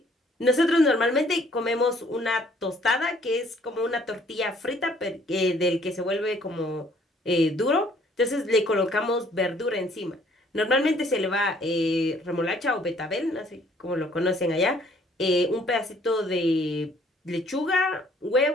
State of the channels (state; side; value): normal; both; correlation 0.60